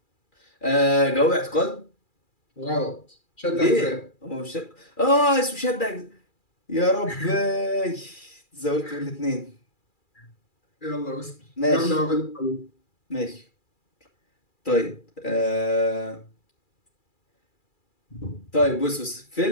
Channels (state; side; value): late; right; 2.4 ms